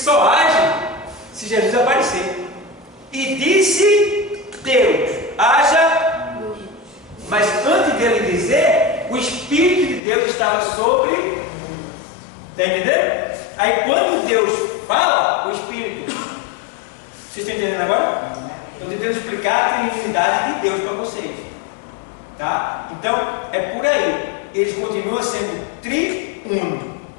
age se Jesus aparecer. E disse Deus, haja. Mas antes dele dizer, o Espírito de Deus estava sobre. Está entendendo? Aí quando Deus fala, o Espírito. Vocês estão entendendo agora? Estou tentando explicar a Trinidade de Deus para vocês. Tá? Então, é por aí. Eles continuam sendo triúnico.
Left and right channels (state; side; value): drops out; right; at 10.0 s